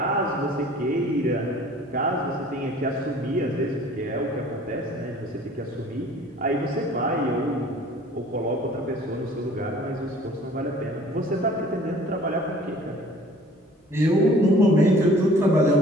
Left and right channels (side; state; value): both; normal; correlation 0.51